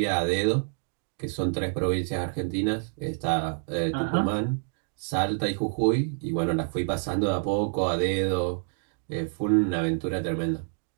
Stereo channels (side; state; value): left; silent; 60 dB below the other